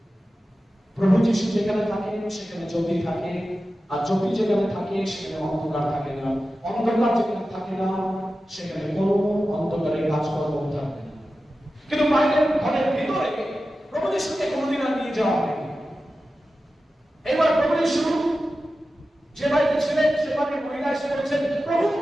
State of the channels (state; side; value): normal; both; correlation 0.93